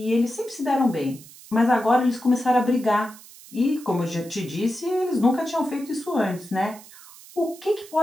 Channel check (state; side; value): noise; right; hiss, 20 dB below the sound